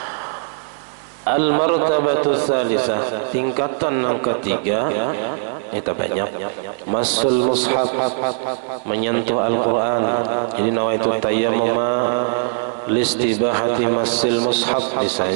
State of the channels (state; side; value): silent; left; digital silence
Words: Al-martabatu tsalisah tingkatan yang ketiga itu banyak masul mushaf, menyentuh Al-Quran. Jadi nawaitu tayammum listibahati masil mushaf